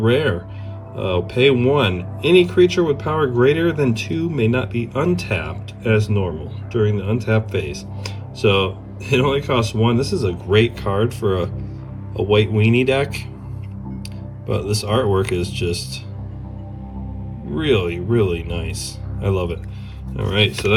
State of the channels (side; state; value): both; identical; correlation 1.00